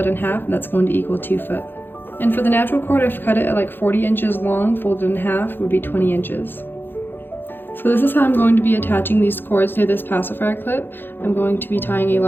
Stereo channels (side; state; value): right; late; 0.099 ms